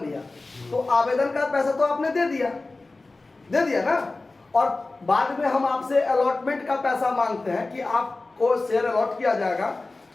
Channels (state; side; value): quieter; right; 3.3 dB